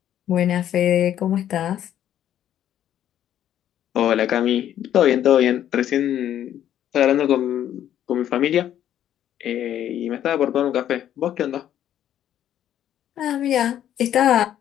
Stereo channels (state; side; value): quieter; right; 11.0 dB